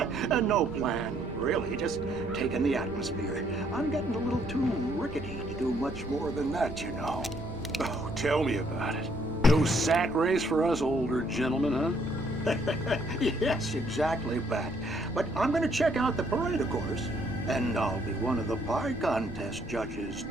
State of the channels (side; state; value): both; normal; correlation 0.68